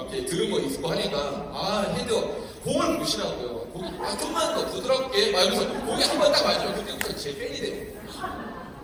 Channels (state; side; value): identical; both; correlation 1.00